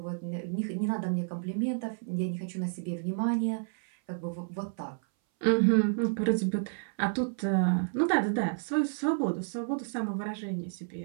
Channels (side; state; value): left; silent; 57 dB below the other